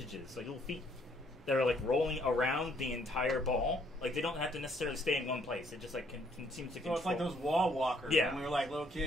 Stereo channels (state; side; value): normal; both; correlation 0.66